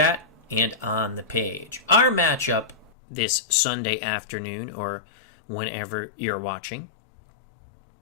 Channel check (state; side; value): drops out; right; at 2.9 s